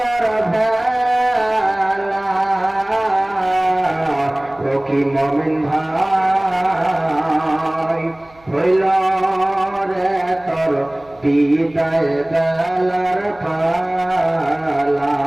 ভেলা। ও কি মুমিন ভাই হইল রে তোর বিদায় বেলার পালা।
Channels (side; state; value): right; noise; hum, 29 dB below the sound